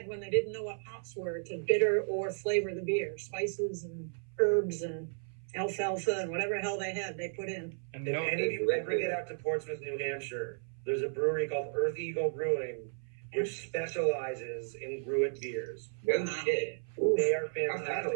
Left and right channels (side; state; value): left; silent; 55 dB below the other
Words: when they didn't know what hops were to bitter or flavor the beer. Spices and herbs and alfalfa and whatever hell they had, they put in. and If no, any of you ever get out to Portsmouth, New Hampshire, there's a brewery called Earth Eagle Brewing, which specializes in gruit beers. No shit. They are